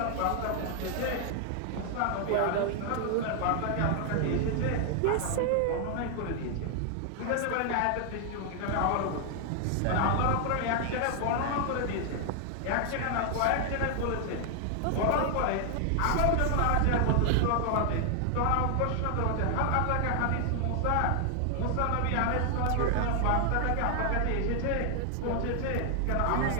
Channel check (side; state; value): both; different; correlation 0.00